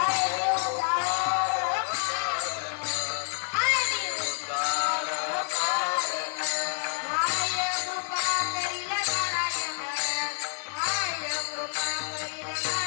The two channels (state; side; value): silent; right; 58 dB below the other